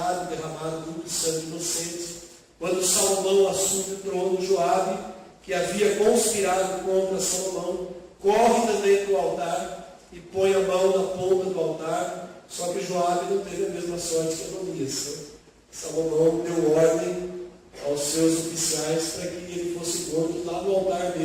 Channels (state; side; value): identical; both; correlation 1.00